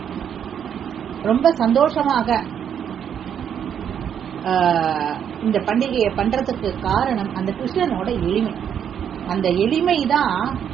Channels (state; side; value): quieter; left; 8.6 dB